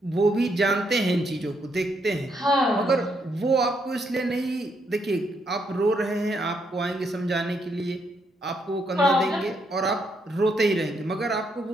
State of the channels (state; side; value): normal; both; correlation 0.76